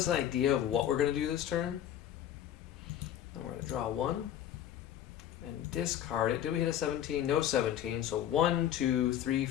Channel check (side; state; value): right; quieter; 11.0 dB